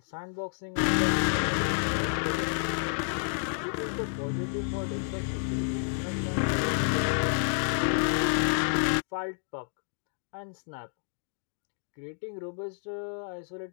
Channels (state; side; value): silent; right; digital silence